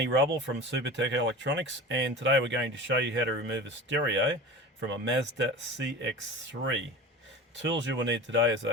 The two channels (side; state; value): both; normal; correlation 0.34